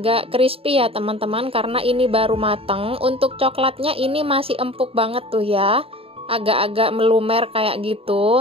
crispy ya teman-teman, karena ini baru mateng. Untuk coklatnya ini masih empuk banget tuh ya, agak-agak melumer kayak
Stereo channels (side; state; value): left; late; 0.27 ms